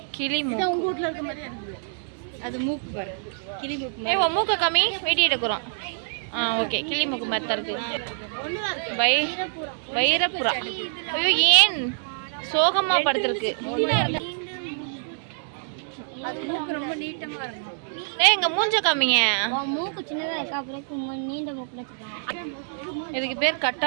கிளி மூக்கு. உங்க வீட்ல இருக்க மாதிரி இருக்குது. அது மூக்கு பாரு. கிளி மூக்கு. ஏய் உன் மூக்க காமி, வீடியோ எடுக்கறோம். ஓகே. கிளி மூக்கு மாதிரி தான் இருக்கு. வைரப்புறா. ஐயோ ஏன் சோகமா படுத்துருக்கு? அது மூக்கு ரொம்ப நீட்டமா இருக்கும். ஏய் எங்க மூஞ்ச காமிங்க. மூக்கு சின்னதா இருக்கு, அப்புறம் நீண்ட மூக்குல வச்சிருக்காங்க. இதுக்கு பேர்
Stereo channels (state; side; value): silent; left; digital silence